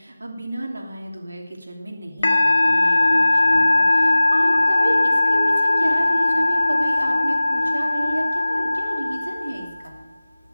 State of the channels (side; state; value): both; inverted; correlation -0.99